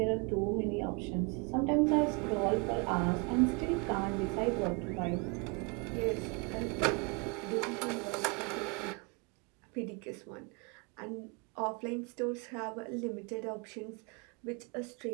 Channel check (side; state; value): left; quieter; 31.9 dB